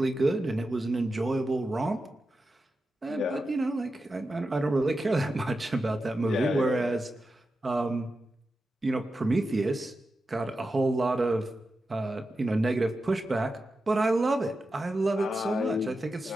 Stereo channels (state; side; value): normal; both; correlation 0.91